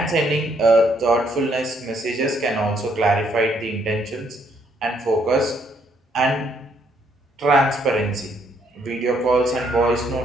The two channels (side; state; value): both; normal; correlation 0.70